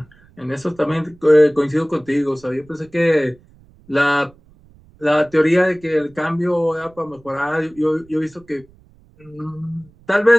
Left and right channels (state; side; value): noise; right; rumble, 28 dB below the sound